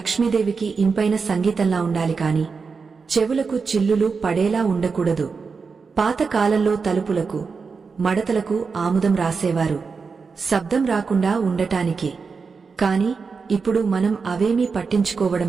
ఇంపైన సంగీతంలా ఉండాలి కాని చెవులకు చిల్లులు పడేలా ఉండకూడదు. పాత కాలంలో తలుపులకు మడతలకు ఆముదం రాసేవారు, శబ్దం రాకుండా ఉండటానికి. కాని ఇప్పుడు మనం అవేమీ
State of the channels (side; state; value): left; quieter; 5.0 dB